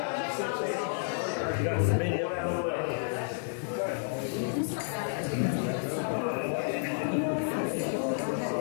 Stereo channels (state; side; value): silent; right; digital silence